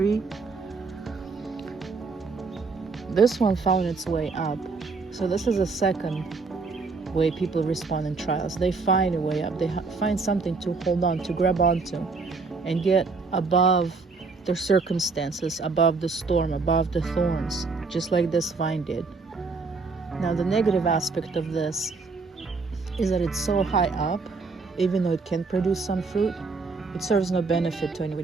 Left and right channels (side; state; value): left; quieter; 4.3 dB